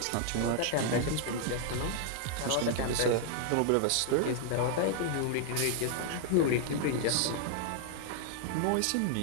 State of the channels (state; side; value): different; both; correlation 0.00